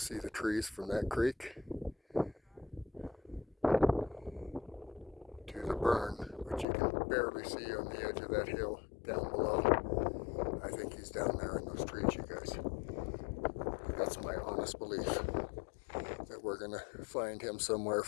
the trees from that creek to the burn, which you can barely see on the edge of that hill down below. I think he's down there in those trees, you guys. That's my honest belief, that we're gonna find him somewhere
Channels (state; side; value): drops out; right; at 6.7 s